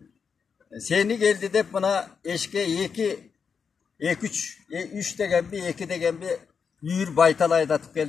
сени келди деп мына эшке 3 дегенби, 2 дегенби үйүр байтал айдатып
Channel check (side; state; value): right; quieter; 6.1 dB